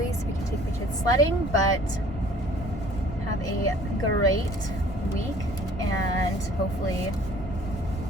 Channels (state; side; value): normal; both; correlation 0.53